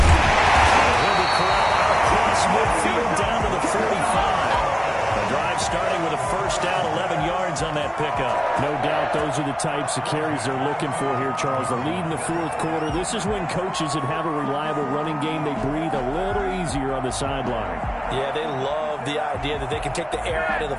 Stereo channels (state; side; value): identical; both; correlation 1.00